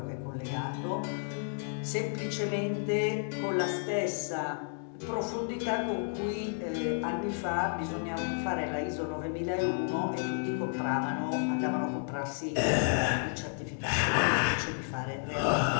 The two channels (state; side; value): silent; right; 57 dB below the other